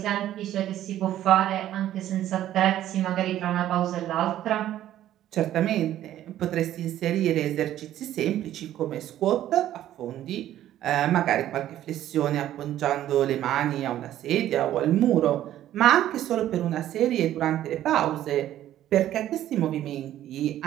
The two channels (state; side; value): quieter; left; 12.5 dB